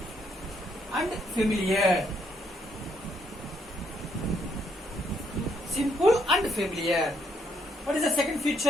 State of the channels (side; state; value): both; normal; correlation 0.73